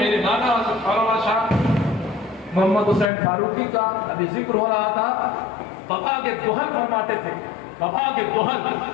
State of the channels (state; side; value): drops out; right; at 3.1 s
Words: نانا حضرت مولانا شاہ محمد حسین فاروقی کا ابھی ذکر ہو رہا تھا. بابا کے گوہر فرماتے تھے، بابا کے گوہر